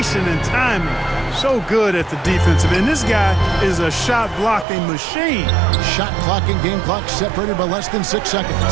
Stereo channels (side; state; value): left; drops out; at 4.7 s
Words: and timing, so good at the defensive end. This guy is a shot-blocking machine. Shot clock and game clock separated by less than 6